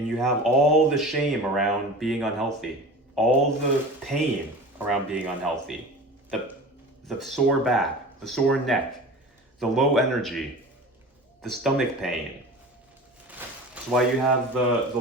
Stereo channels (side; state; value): both; normal; correlation 0.36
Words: you have all the shame around being unhealthy, all the pain around being unhealthy, the sore back, the sore neck, the low energy, the stomach pain. It's why you have the